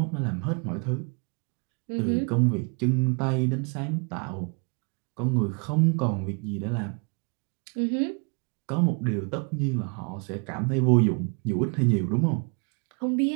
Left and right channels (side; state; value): left; quieter; 35.8 dB